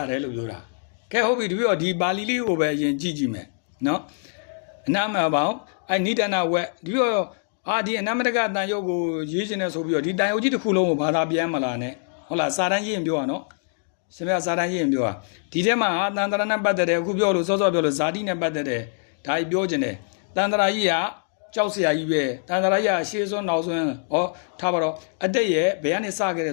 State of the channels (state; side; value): silent; right; digital silence